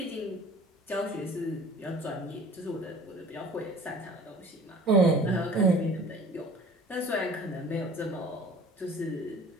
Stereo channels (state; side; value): normal; both; correlation 0.46